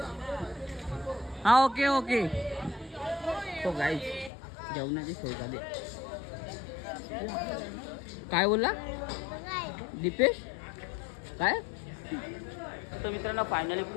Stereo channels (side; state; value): right; drops out; at 4.3 s